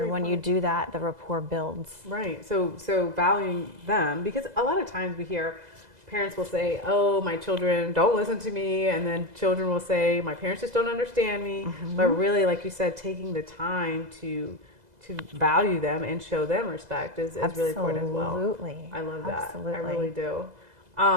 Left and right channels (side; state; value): left; late; 2.0 ms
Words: when you do that, the rapport builds. Right. So valuing them, because a lot of times we hear parents will say, oh, my children don't listen to me, and then children will say, my parents just don't understand me. But really, like you said, taking the time to value them and show them respect is really important as well. Absolutely. I love that. Absolutely. I really do.